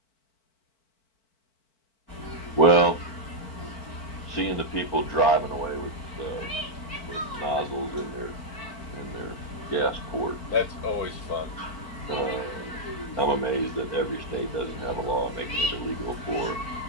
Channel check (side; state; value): right; late; 4.4 ms